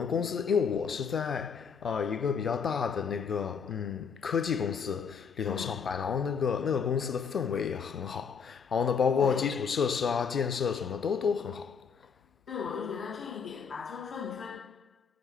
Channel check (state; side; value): quieter; right; 6.2 dB